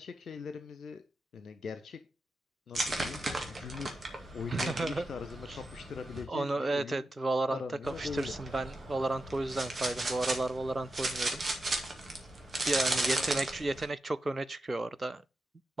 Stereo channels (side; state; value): both; normal; correlation 0.89